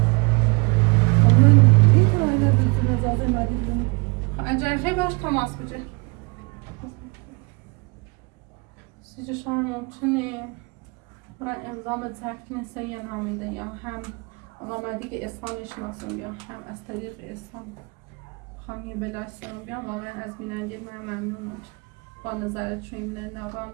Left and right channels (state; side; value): quieter; left; 29.8 dB